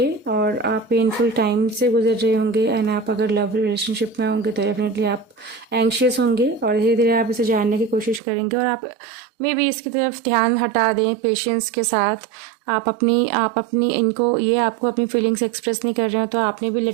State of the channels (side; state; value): left; drops out; at 8.2 s